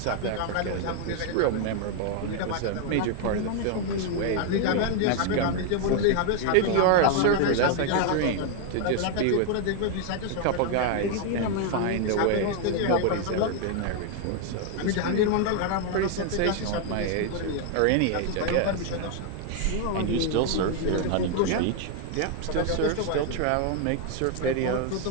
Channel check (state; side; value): different; both; correlation 0.00